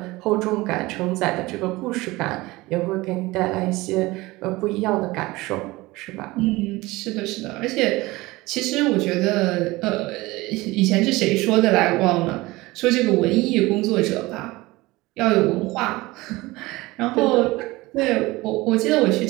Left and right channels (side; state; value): left; quieter; 20.7 dB